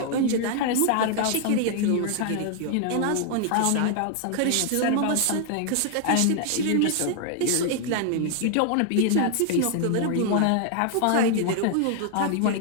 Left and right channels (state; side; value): different; both; correlation 0.00